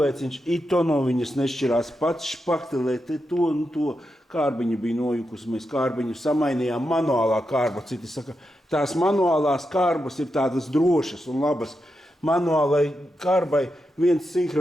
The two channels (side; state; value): both; normal; correlation 0.87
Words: ito no viņas nešķirās, pats špaktelē te to un to. Kārbiņa bija nojukusi, mēs kārbiņu samainījām, manuālā kārba. Citi saka, tās manuālās kārbas ir tādas drošas un labas. Manuālai kārbai viens